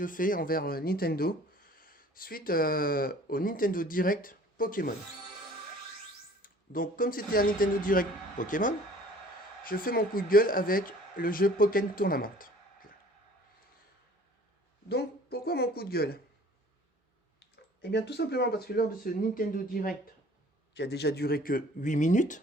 fais envers Nintendo, suite au Nintendo Direct Pokémon. Donc comme c'était un Nintendo Direct Pokémon, je fais mon coup de gueule avec le jeu Pokémon Tournament. Donc pourquoi mon coup de gueule? Eh bien tout simplement parce que lors de ce Nintendo Direct, qui a déjà duré que 8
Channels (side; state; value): both; normal; correlation 0.50